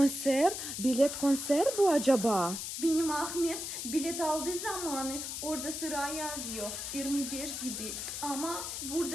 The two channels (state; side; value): noise; left; hiss, 5 dB below the sound